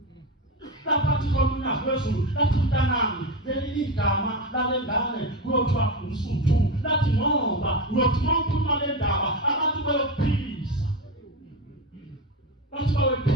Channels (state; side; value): normal; both; correlation 0.18